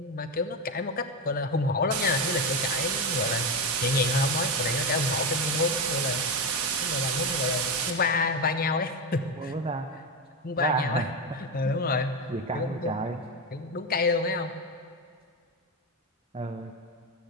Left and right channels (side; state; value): both; normal; correlation 0.13